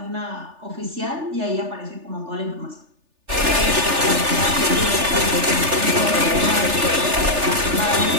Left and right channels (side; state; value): left; late; 3.4 ms